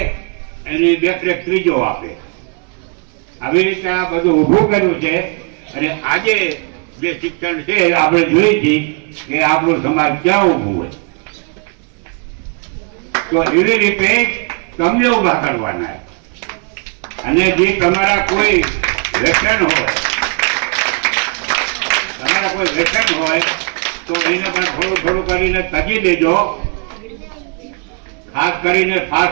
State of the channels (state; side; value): quieter; left; 37.0 dB